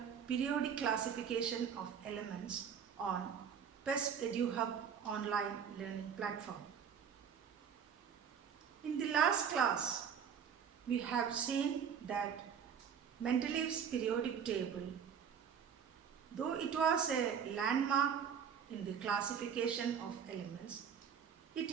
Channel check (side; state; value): left; quieter; 7.5 dB